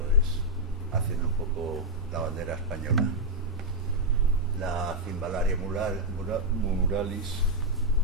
es haciendo un poco la bandera española. La Cimbalaria muralis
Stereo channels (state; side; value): normal; both; correlation -0.02